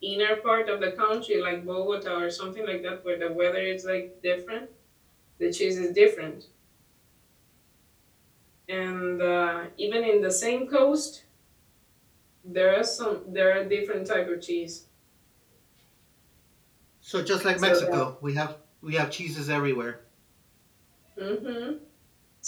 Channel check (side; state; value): both; identical; correlation 1.00